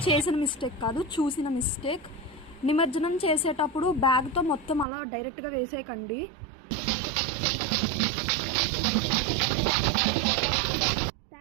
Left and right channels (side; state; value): left; drops out; at 4.9 s